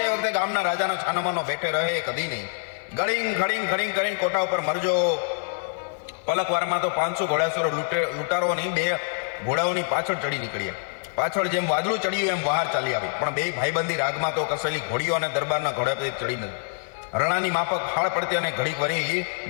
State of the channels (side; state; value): right; silent; 61 dB below the other